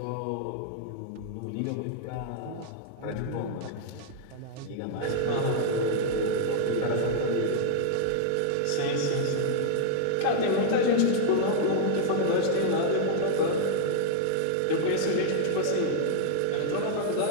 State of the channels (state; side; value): different; both; correlation -0.01